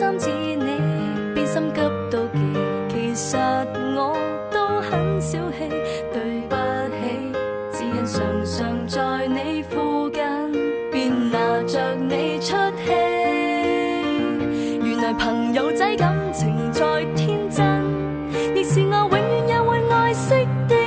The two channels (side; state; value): both; identical; correlation 1.00